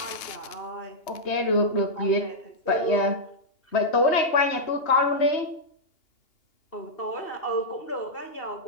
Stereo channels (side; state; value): right; late; 2.8 ms